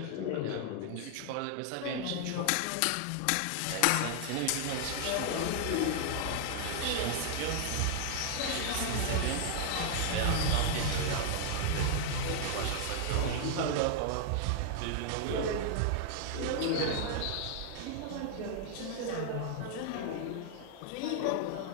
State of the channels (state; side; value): different; both; correlation 0.00